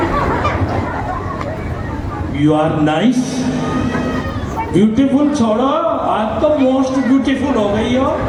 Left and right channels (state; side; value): identical; both; correlation 1.00